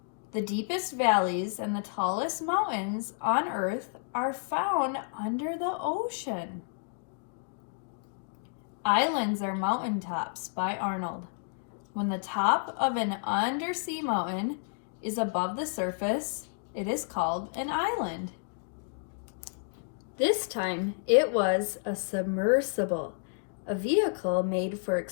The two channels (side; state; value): right; silent; digital silence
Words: The deepest valleys and the tallest mountains on Earth are found under the ocean. Islands are mountaintops by Arnold. When the top of an undersea mountain is above the surface, it is called an island. This time, it was a submersible, a vehicle made for